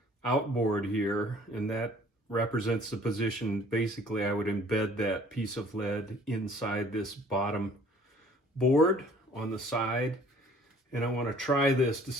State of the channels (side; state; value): both; normal; correlation 0.54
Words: outboard here, and that represents the position. Basically, I would embed that piece of lead inside this bottom board on the side, and I want to try this to